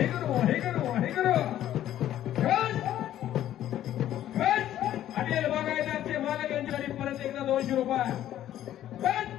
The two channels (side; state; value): right; quieter; 12.3 dB